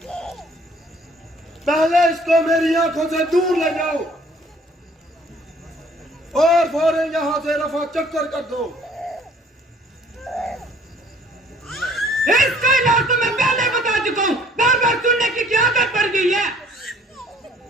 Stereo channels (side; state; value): both; normal; correlation 0.57